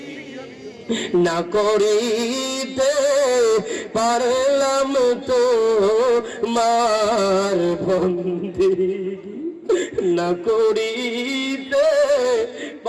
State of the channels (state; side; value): identical; both; correlation 1.00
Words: না করিতে পারলাম তো মার বন্দেগী, না করিতে